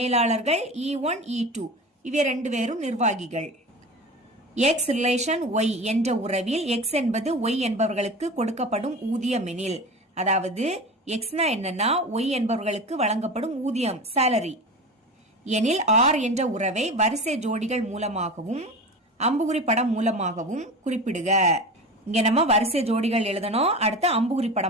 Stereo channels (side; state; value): both; normal; correlation 0.30